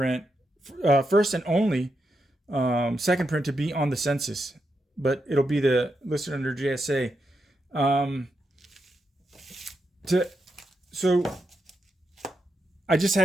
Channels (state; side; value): normal; both; correlation 0.84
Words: only second print to be on the census, but it'll be listed under JSA. So I just